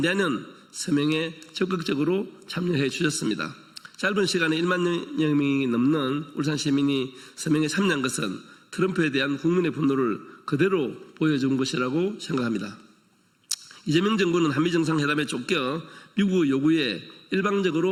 서명에 적극적으로 참여해 주셨습니다. 짧은 시간에 1만 명이 넘는 울산 시민이 서명에 참여한 것은 트럼프에 대한 국민의 분노를 그대로 보여준 것이라고 생각합니다. 이재명 정부는 한미 정상회담에 쫓겨 미국의 요구에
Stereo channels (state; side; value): identical; both; correlation 1.00